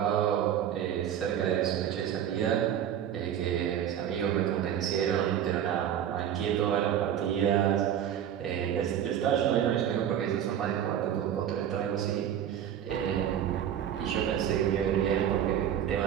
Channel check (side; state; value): left; quieter; 9.9 dB